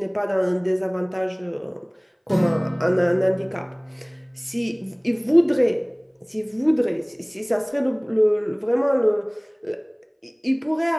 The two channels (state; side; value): identical; both; correlation 1.00